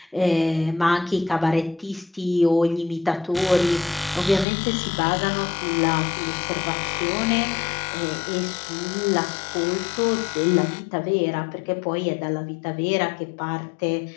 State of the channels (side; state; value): right; drops out; at 4.5 s